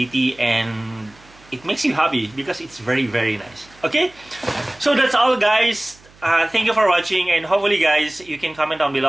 and it makes you happy because it's very nice. Okay, so that's all, guys. Thank you for watching, and hopefully, guys, you can comment down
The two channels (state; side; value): noise; right; hum, 27 dB below the sound